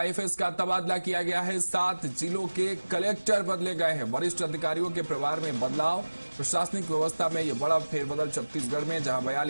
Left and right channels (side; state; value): both; inverted; correlation -1.00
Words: का तबादला किया गया है। 7 जिलों के कलेक्टर बदले गए हैं। वरिष्ठ अधिकारियों के प्रभार में बदलाव। प्रशासनिक व्यवस्था में यह बड़ा फेरबदल छत्तीसगढ़ में, जहां